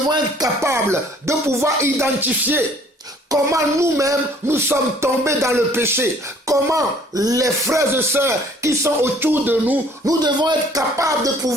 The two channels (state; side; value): normal; both; correlation 0.56